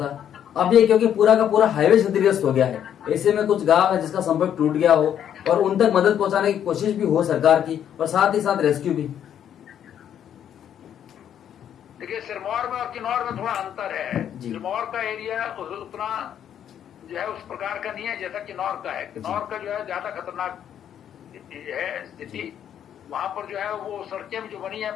अब ये क्योंकि पूरा का पूरा हाईवे क्षतिग्रस्त हो गया है, ऐसे में कुछ गांव है जिसका संपर्क टूट गया हो और उन तक मदद पहुंचाने की कोशिश भी हो सरकार की, और साथ ही साथ रेस्क्यू भी। देखिए, सिरमौर में और किन्नौर में थोड़ा अंतर है। सिरमौर का एरिया उतना जो है उस प्रकार का नहीं है जैसा किन्नौर का है। किन्नौर का जो है ज्यादा खतरनाक है स्थिति। वहां पर जो है वो सड़कें जो बनी है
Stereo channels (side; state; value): right; quieter; 9.6 dB